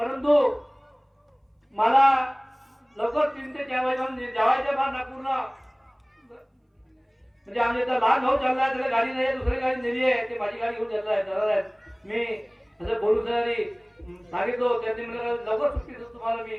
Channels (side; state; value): both; identical; correlation 1.00